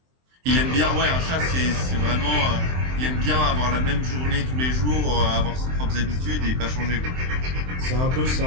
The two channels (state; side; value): late; left; 23 ms